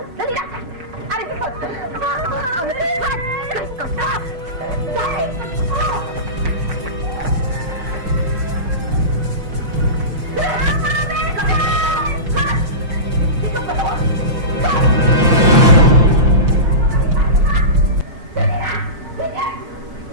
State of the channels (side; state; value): left; late; 5.9 ms